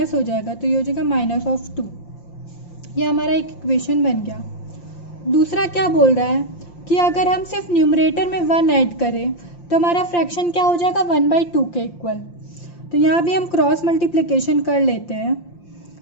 हो जाएगा, तो ये हो जाएगा -2. ये हमारा एक इक्वेशन बन गया. दूसरा क्या बोल रहा है कि अगर हम सिर्फ न्यूमरेटर में 1 ऐड करें तो हमारा फ्रैक्शन क्या हो जाएगा, 1/2 के इक्वल. तो यहाँ भी हम क्रॉस मल्टीप्लिकेशन कर लेते हैं.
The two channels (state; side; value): late; right; 5.8 ms